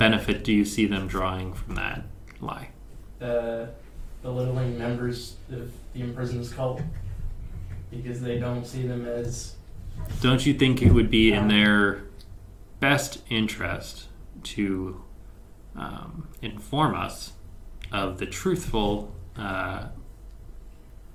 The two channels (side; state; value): both; identical; correlation 1.00